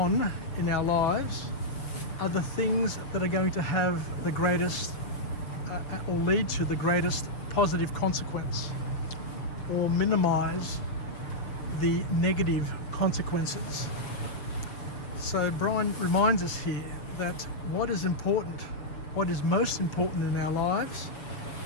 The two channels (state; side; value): late; right; 6.4 ms